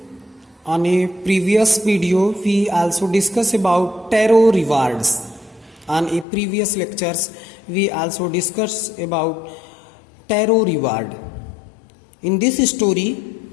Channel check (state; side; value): drops out; right; at 6.2 s